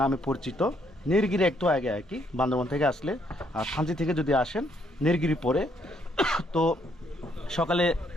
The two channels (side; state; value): both; normal; correlation 0.71